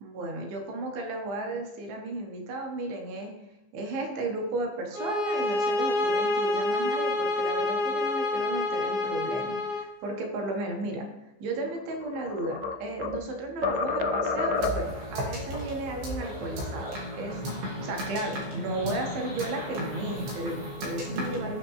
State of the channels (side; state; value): left; late; 15 ms